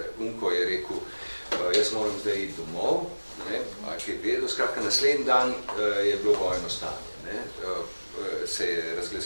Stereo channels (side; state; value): both; inverted; correlation -1.00